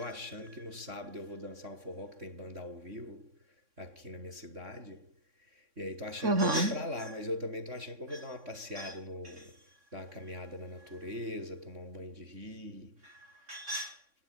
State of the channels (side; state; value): left; late; 3.6 ms